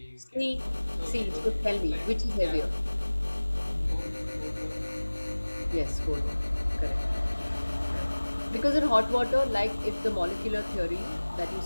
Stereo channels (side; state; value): both; inverted; correlation -1.00